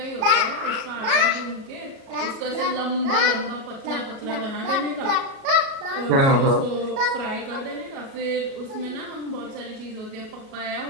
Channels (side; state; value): left; late; 36 ms